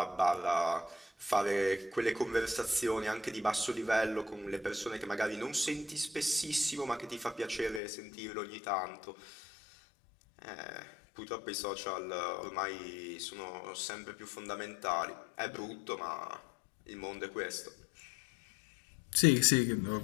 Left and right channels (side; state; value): right; drops out; at 7.8 s